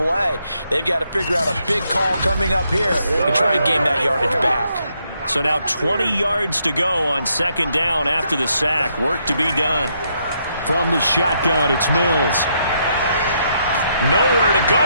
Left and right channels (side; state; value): both; inverted; correlation -0.76